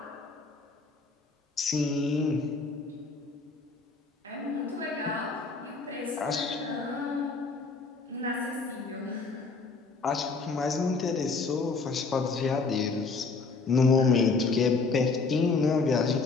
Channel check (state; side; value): quieter; right; 4.2 dB